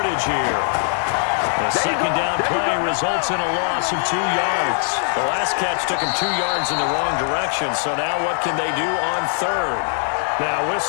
here. The 2nd down play results in a loss of 2 yards. The last catch took him 2 yards in the wrong direction. So now what can they do on 3rd? Now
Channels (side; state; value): right; silent; 61 dB below the other